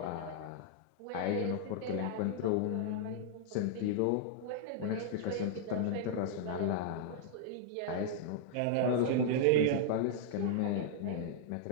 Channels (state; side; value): different; both; correlation -0.01